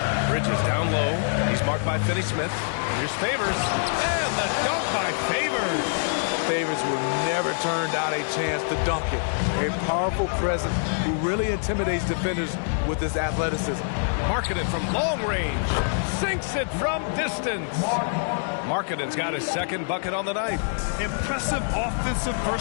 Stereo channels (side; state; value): right; silent; digital silence